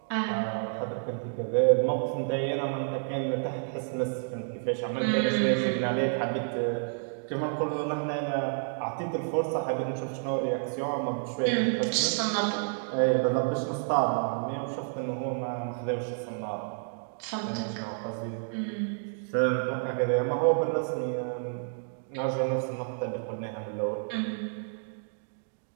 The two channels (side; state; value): left; silent; digital silence